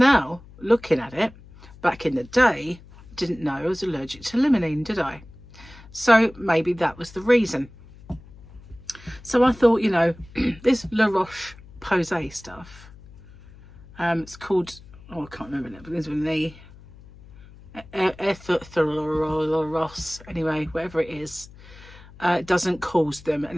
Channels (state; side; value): noise; left; hum, 21 dB below the sound